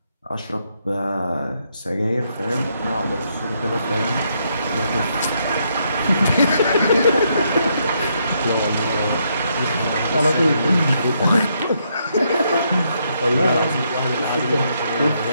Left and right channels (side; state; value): both; inverted; correlation -0.76